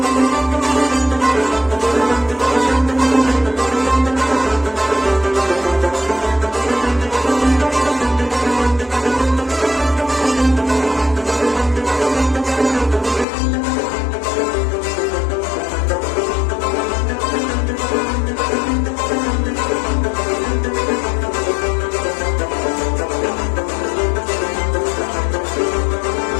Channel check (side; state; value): right; drops out; at 13.2 s